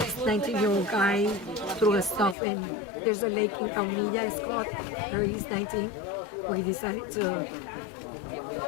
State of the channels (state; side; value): drops out; right; at 2.4 s